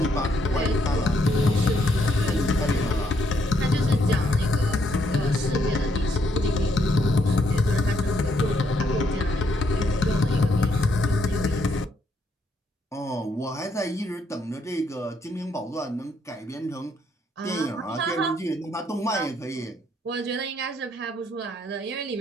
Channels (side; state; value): both; normal; correlation 0.72